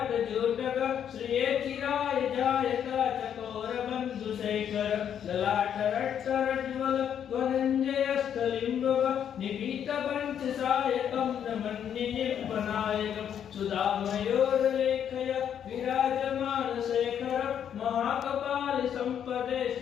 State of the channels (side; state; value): right; quieter; 9.0 dB